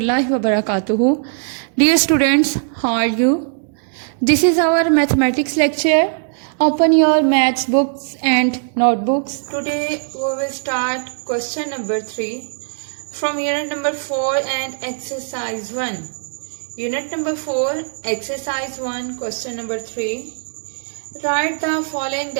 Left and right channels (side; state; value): left; silent; digital silence